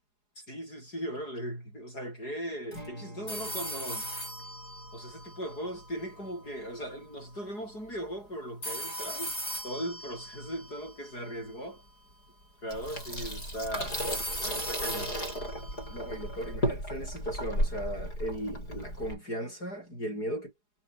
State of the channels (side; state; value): right; late; 4.8 ms